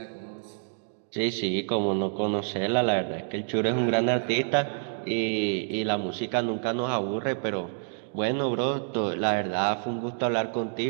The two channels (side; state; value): left; silent; digital silence